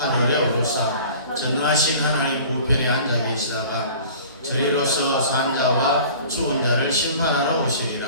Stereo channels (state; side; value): inverted; both; correlation -0.45